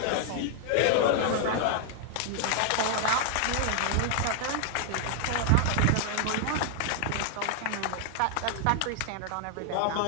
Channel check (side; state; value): both; different; correlation 0.00